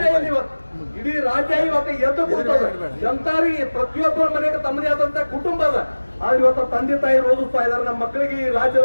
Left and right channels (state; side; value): inverted; both; correlation -1.00